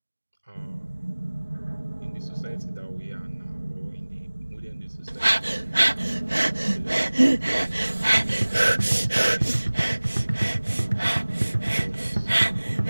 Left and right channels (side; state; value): both; inverted; correlation -1.00